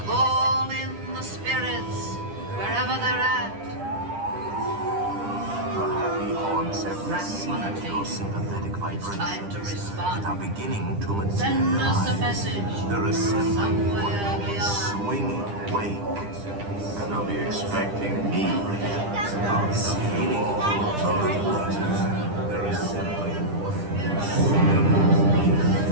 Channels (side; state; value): left; late; 10 ms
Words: call in the spirits wherever they're at. The happy haunts have Rats wanna received take your it. sympathetic It's time to vibrations respond. and are beginning to materialize. Send us a message They're assembling somewhere beyond. swinging wake, and they'll be expecting me. It's beginning of they're assembling.